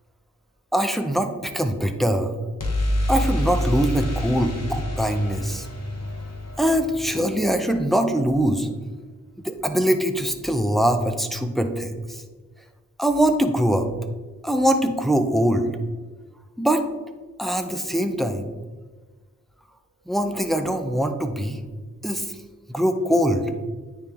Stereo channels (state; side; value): normal; both; correlation 0.81